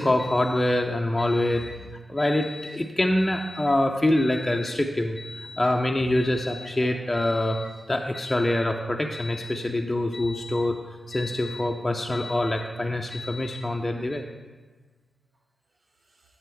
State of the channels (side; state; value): both; normal; correlation 0.95